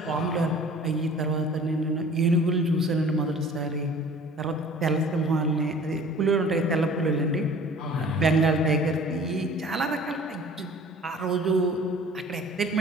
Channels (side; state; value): both; normal; correlation 0.47